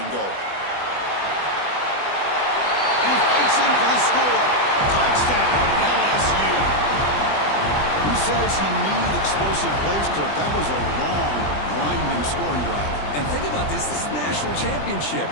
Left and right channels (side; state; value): right; late; 20 ms